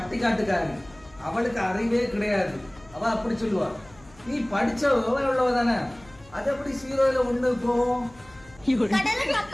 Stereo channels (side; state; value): left; noise; hum, 25 dB below the sound